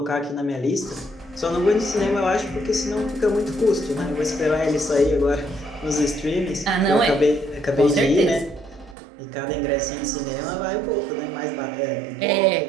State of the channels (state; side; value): drops out; left; at 9.0 s